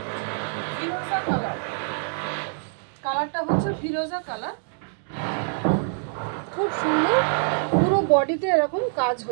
ফিরোজা কালার, কালারটা হচ্ছে ফিরোজা কালার, খুব সুন্দর। পুরো বডিতে এরকম কাজ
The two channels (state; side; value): silent; left; digital silence